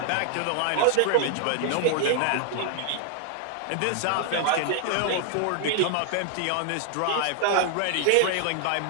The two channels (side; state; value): both; different; correlation 0.00